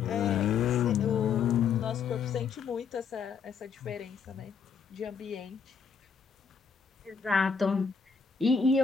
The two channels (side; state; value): right; quieter; 6.0 dB